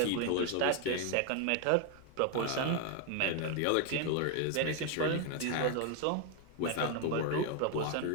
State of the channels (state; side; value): different; both; correlation 0.01